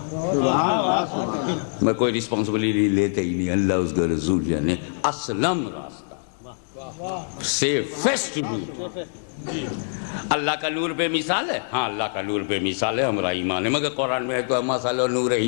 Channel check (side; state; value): right; silent; digital silence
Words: میں کوئی رسپانسبلٹی لیتے ہی نہیں، اللہ اس کا رسول جانے. اسلم راستہ، سیفسٹ روٹ. اللہ کا نور بے مثال ہے، ہاں اللہ کا نور بے مثال ہے، ہمارا ایمان ہے، مگر قرآن میں ہے تو مثل نور